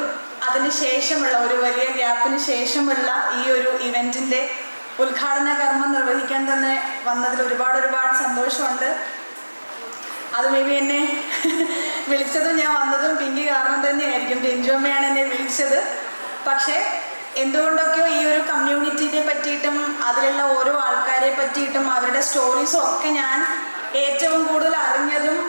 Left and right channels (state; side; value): inverted; both; correlation -1.00